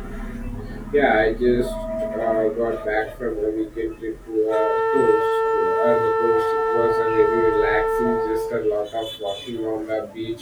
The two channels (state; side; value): identical; both; correlation 1.00